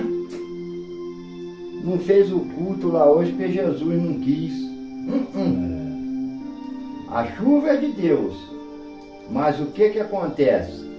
não fez o culto lá hoje porque Jesus não quis. A chuva é de Deus, mas o que acontece?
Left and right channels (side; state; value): both; identical; correlation 1.00